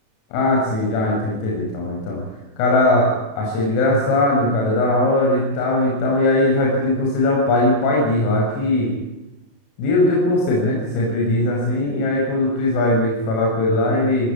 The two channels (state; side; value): late; right; 28 ms